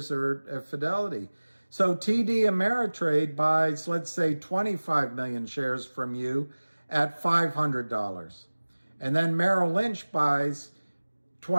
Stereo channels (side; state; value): both; inverted; correlation -1.00